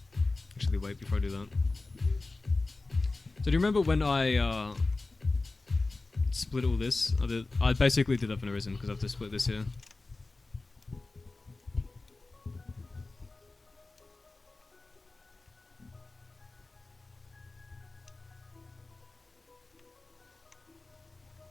Actually, wait, before I do that. So do you remember when I split all this? I basically did that for no reason, because I have to split this here.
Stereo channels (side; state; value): right; quieter; 3.4 dB